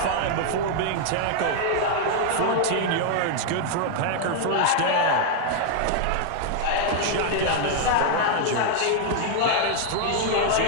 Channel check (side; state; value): both; different; correlation 0.00